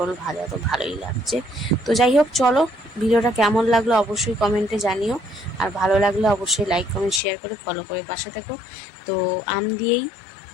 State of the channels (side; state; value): right; drops out; at 7.2 s